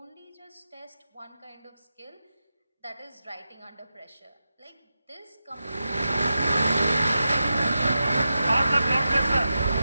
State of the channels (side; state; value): both; inverted; correlation -0.90